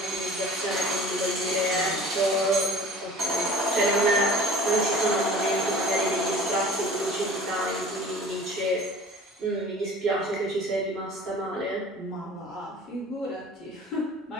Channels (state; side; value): normal; both; correlation 0.44